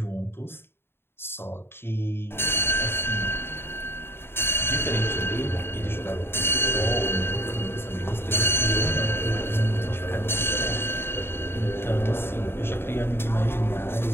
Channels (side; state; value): right; late; 0.11 ms